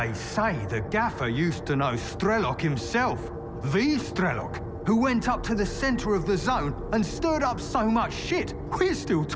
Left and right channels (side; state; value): both; identical; correlation 1.00